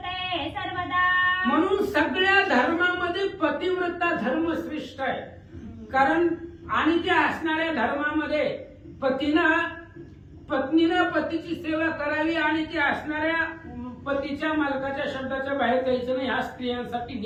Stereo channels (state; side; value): identical; both; correlation 1.00